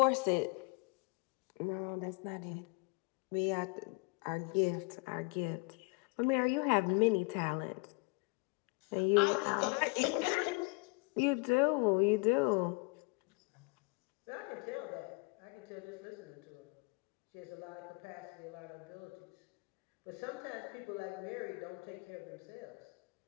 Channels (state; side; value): quieter; right; 30.1 dB